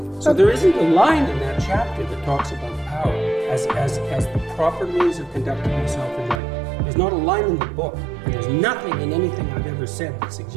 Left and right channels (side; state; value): left; drops out; at 6.4 s